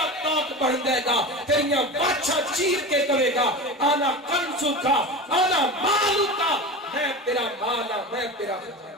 تاک بڑھ جائے گا تیریاں باچھا چیر کے کہے گا آنا کنزو کا آنا مالو کا میں تیرا مالا میں تیرا خزانہ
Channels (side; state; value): both; normal; correlation 0.28